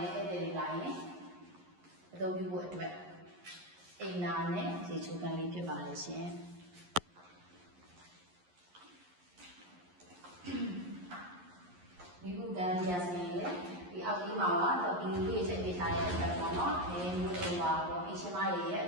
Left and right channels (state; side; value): late; left; 11 ms